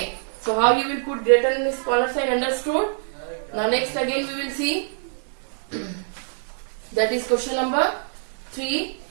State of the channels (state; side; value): silent; left; 62 dB below the other